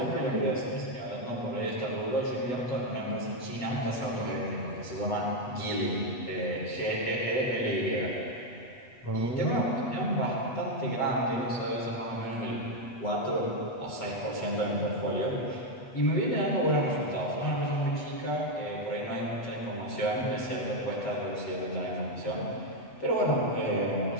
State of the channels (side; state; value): right; late; 8.1 ms